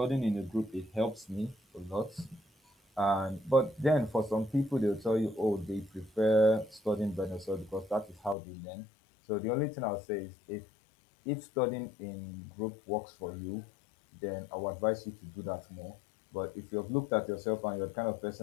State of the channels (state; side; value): drops out; right; at 8.3 s